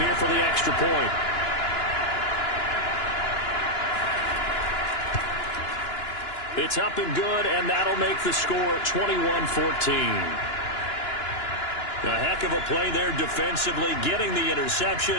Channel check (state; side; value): late; right; 2.9 ms